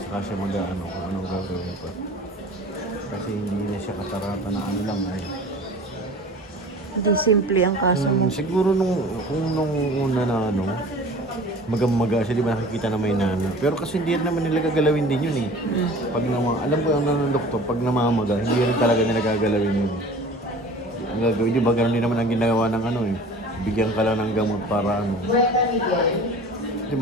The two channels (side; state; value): both; normal; correlation 0.42